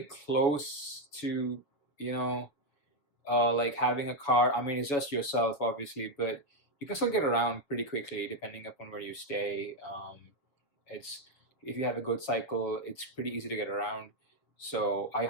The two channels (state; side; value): late; right; 7.3 ms